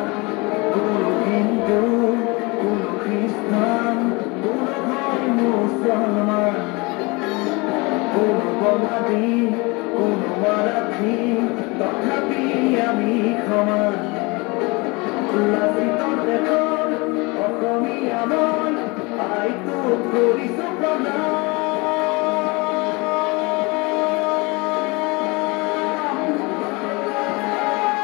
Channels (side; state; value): right; quieter; 26.4 dB